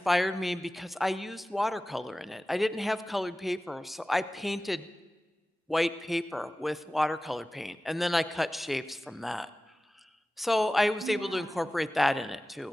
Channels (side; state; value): both; normal; correlation 0.96